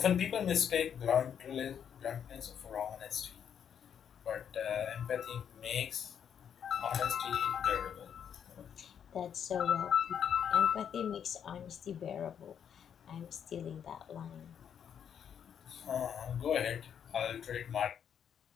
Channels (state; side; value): quieter; right; 8.3 dB